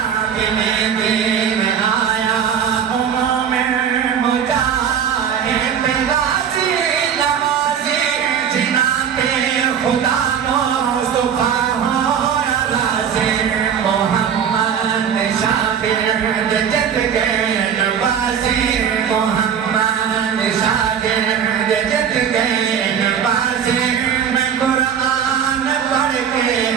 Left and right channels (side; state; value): left; quieter; 8.1 dB